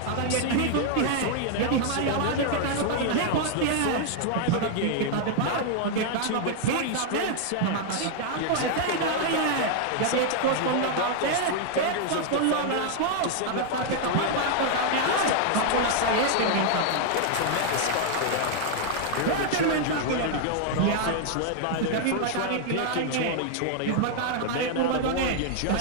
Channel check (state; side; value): different; both; correlation 0.00